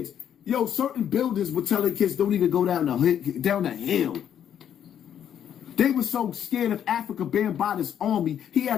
yo, certain buildings would tell their kids don't even go down the hill. They were so scared of Africa Bambaataa's army. He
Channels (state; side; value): quieter; right; 9.4 dB